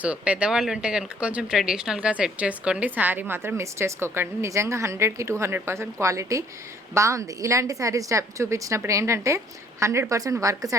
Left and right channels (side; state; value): both; normal; correlation 0.61